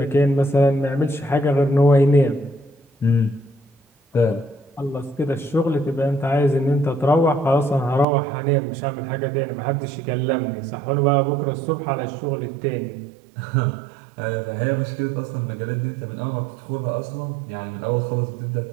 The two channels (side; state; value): left; drops out; at 8.1 s